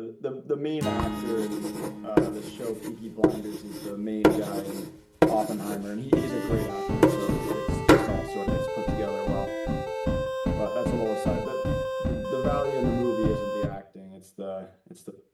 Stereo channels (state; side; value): identical; both; correlation 1.00